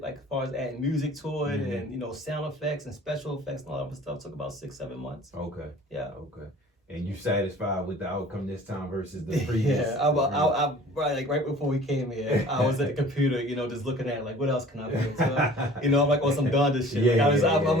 as far as adding music to it and sound effects and special effects and all that stuff. Took about 6-7 months. Okay. Yeah. Okay. and you satisfied with the outcome this time versus the previous. Yeah, I right before we came here, I was at the computer, just looking at like what else can I put into, I'm like on some Donda shit. I'm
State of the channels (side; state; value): both; normal; correlation 0.47